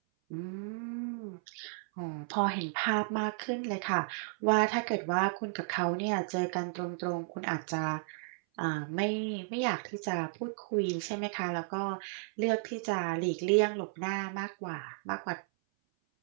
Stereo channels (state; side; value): silent; left; 55 dB below the other